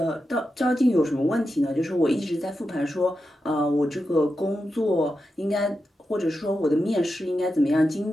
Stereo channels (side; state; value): both; normal; correlation 0.89